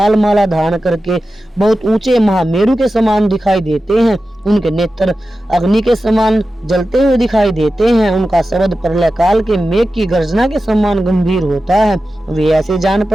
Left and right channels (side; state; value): both; normal; correlation 0.93